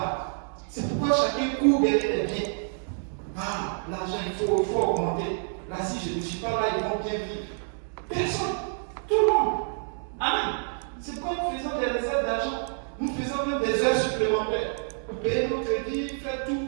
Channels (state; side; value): silent; left; 60 dB below the other